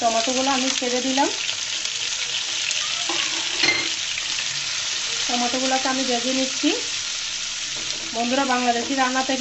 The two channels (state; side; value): identical; both; correlation 1.00